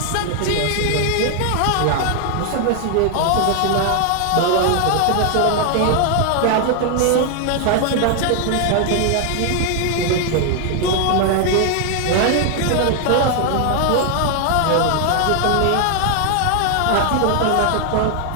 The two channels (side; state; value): both; different; correlation 0.00